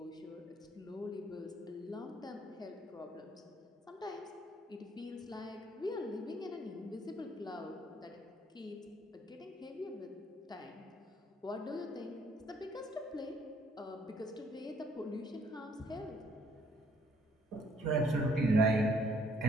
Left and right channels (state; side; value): normal; both; correlation 0.65